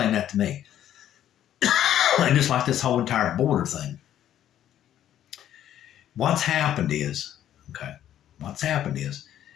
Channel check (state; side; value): quieter; right; 11.3 dB